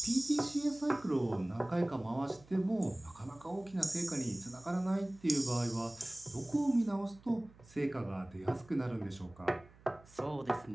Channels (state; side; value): noise; right; hum, 24 dB below the sound